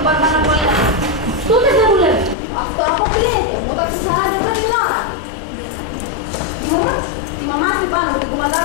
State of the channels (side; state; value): right; drops out; at 2.4 s